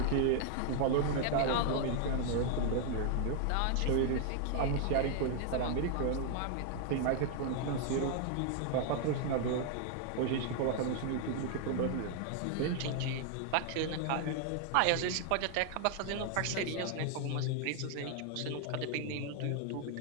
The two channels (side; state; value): both; different; correlation 0.00